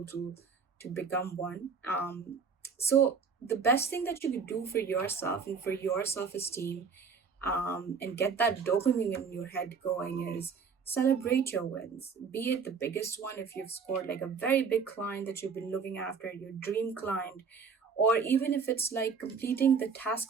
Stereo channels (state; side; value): quieter; left; 5.7 dB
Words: to become one. So the best thing that you could do for yourself and for your self-esteem, and get that dopamine in your head going, is celebrate your wins. Be it the biggest one, if you've scored like a very big client that you've been looking after, your dream client, or even if it's like completing the